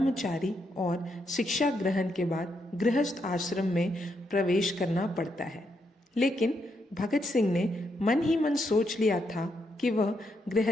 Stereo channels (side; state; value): both; normal; correlation 0.79